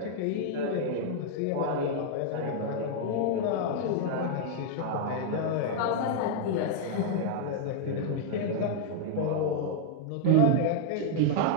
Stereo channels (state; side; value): different; both; correlation -0.01